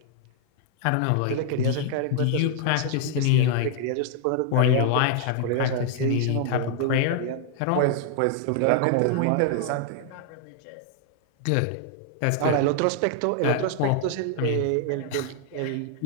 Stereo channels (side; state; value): both; different; correlation -0.01